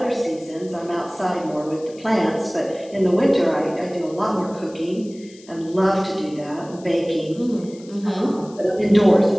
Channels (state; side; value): noise; left; hiss, 24 dB below the sound